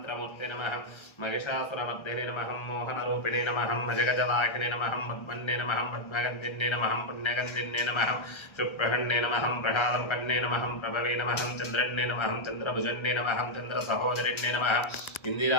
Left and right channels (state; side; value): late; right; 1.3 ms